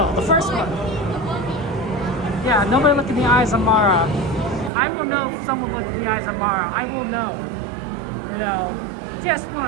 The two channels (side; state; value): left; drops out; at 4.7 s